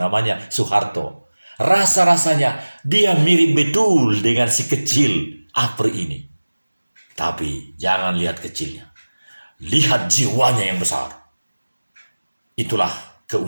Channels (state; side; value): inverted; both; correlation -1.00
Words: Soeharto. Rasa-rasanya dia mirip betul dengan si kecil APRI ini. Tapi jangan lihat kecilnya. Lihat jiwanya yang besar. Itulah